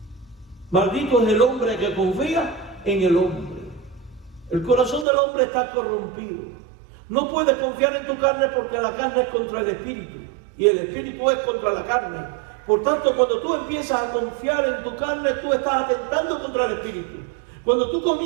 Maldito es el hombre que confía en el hombre. El corazón del hombre está corrompido. No puedes confiar en tu carne porque la carne es contra el espíritu y el espíritu es contra la carne. Por tanto, cuando tú empiezas a confiar en tu carne, tú estás atentando contra el espíritu. Cuando tú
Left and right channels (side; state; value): left; drops out; at 5.1 s